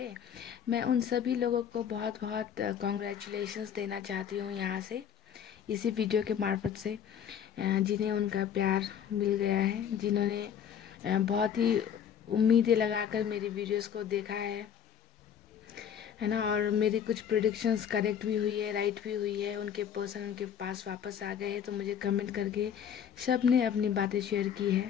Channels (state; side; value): quieter; right; 8.6 dB